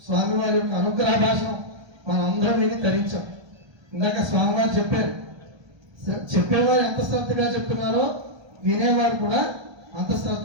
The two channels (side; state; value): left; late; 1.3 ms